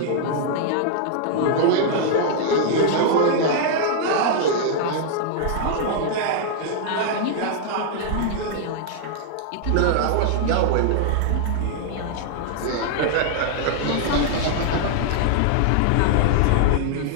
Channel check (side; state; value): both; different; correlation -0.01